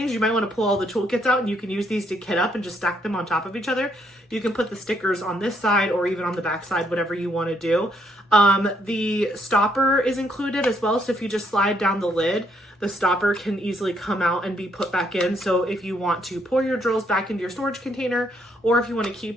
you might want to pull all the toolkits out and you can use these to kit up and just stack them on top of each other. You can put the stickers on this side or even on the back side, whatever you want to do. The stopper is included as well. So if you just slide down the lid, the stopper can easily come out and be put back in. So if you want to pour your drills back into your storage container, or if you want to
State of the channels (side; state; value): both; normal; correlation 0.72